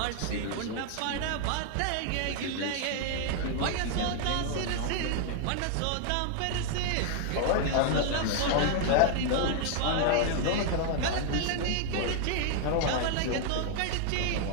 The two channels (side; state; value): both; different; correlation 0.00